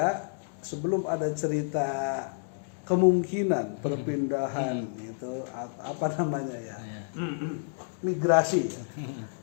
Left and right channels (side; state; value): right; silent; digital silence